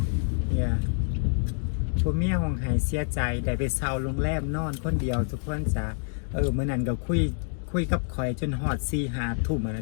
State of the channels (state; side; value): silent; right; 60 dB below the other